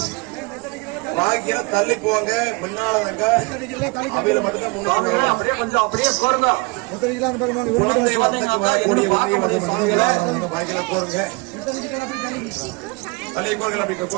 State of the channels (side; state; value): left; quieter; 28.1 dB